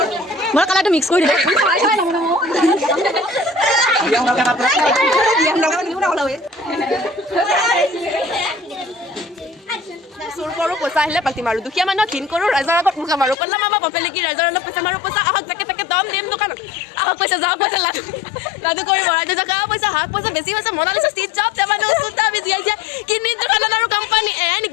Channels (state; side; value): drops out; right; at 13.4 s